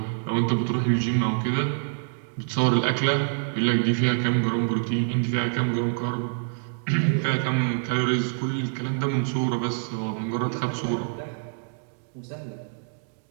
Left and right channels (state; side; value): silent; left; digital silence